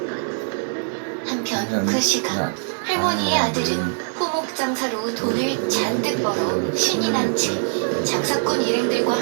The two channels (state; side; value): silent; left; digital silence